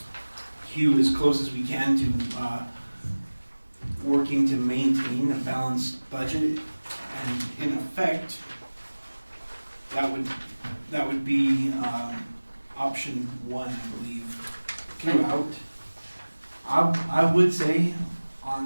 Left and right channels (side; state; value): both; inverted; correlation -1.00